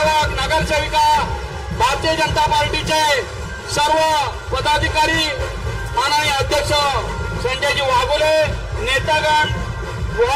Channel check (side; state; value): both; identical; correlation 1.00